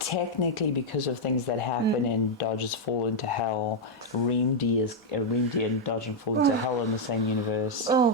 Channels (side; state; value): both; normal; correlation -0.02